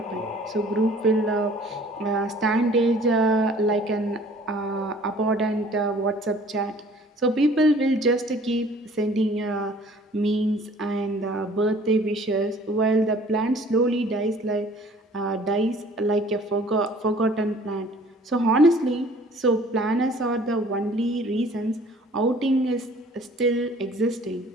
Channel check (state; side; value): normal; both; correlation 0.52